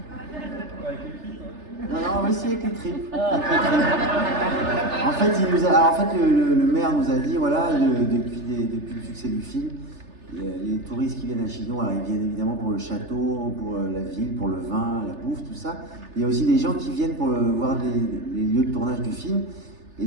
Non, oui, c'est avec les tripes. En fait, le maire nous a dit, voilà, depuis le succès du film, les touristes qui viennent à Chinon, alors ils viennent évidemment pour le château, pour la ville, pour le vin, la bouffe, tout ça. Il y a aussi des gens qui viennent pour voir les lieux de tournage du film. Et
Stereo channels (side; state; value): left; late; 3.3 ms